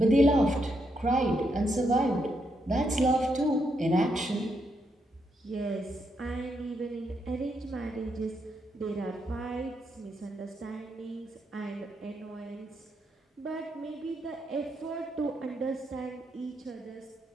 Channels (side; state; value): both; normal; correlation 0.80